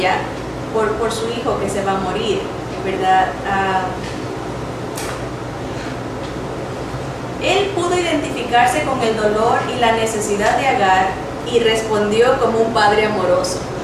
por su hijo que se va a morir, ¿verdad? Él pudo identificarse con el dolor y la necesidad de Agar y respondió como un padre amoroso,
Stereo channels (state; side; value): identical; both; correlation 1.00